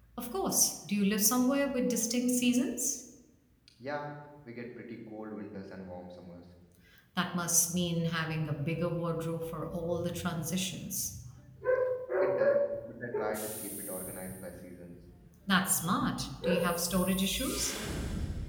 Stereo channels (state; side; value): identical; both; correlation 1.00